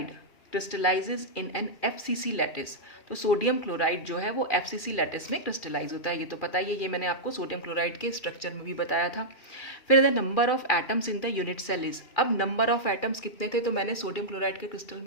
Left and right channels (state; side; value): late; right; 2.4 ms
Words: crystallises in an FCC lattice. तो सोडियम क्लोराइड जो है वो FCC लैटिस में क्रिस्टलाइज होता है, ये तो पता ही है, ये मैंने आपको सोडियम क्लोराइड के स्ट्रक्चर में भी बताया था। फिर the number of atoms in the unit cell is. अब नंबर ऑफ एटम्स कितने थे, तो मैंने सोडियम क्लोराइड के क्रिस्टल